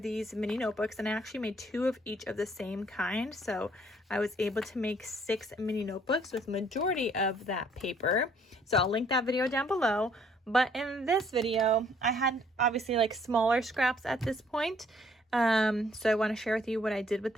mini notebooks, and I actually made 2 of each of the same kind. So I was able to make 6 mini notebooks with majority of that paper. So I'll link that video down below. But in this video, I had obviously like smaller scraps at this point. So I want to share with you what I did with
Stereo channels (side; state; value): both; normal; correlation 0.63